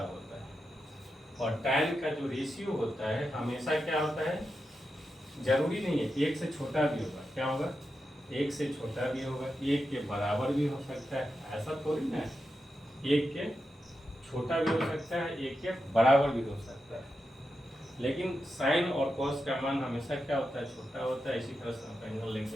होता है। और tan का जो रेशियो होता है हमेशा क्या होता है, जरूरी नहीं है 1 से छोटा भी होगा, क्या होगा, 1 से छोटा भी होगा, 1 के बराबर भी हो सकता है, ऐसा थोड़ी ना है। 1 के छोटा भी हो सकता है, 1 के बराबर भी हो सकता है। लेकिन साइन और कॉस का मान हमेशा क्या होता है, छोटा होता है। इसी तरह से आप एंगल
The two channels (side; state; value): both; normal; correlation 0.88